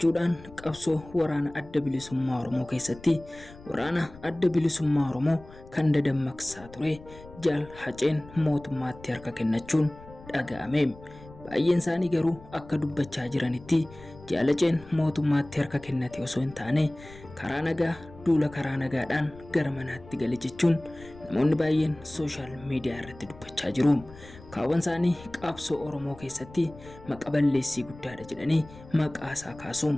qabsoo waraana adda bilisummaa Oromoo keessatti waraana adda bilisummaa Oromoo kan dadammaqsaa ture Jaal Haceen mootummaatti harka kennachuun dhaga'ame. Baay'een isaanii garuu akka dubbachaa jiranitti Jaal Haceen mootummaatti harka kennate osoo hin taane karaa nagaa duula karaa nagaadhaan gara manaatti gale jechuun namoonni baay'een sooshaal miidiyaa irratti dubbachaa jiru. Kaawwan isaanii qabsoo Oromoo keessatti maqaa balleessii guddaadha jedhanii maqaa isaa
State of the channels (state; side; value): noise; left; rumble, 19 dB below the sound